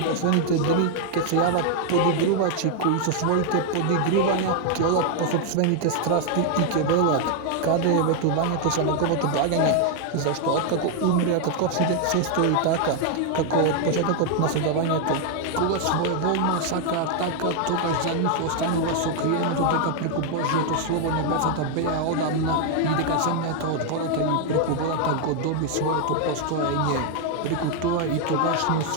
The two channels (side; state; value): both; different; correlation 0.00